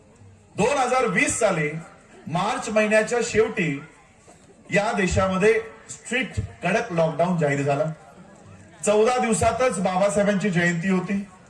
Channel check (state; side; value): identical; both; correlation 1.00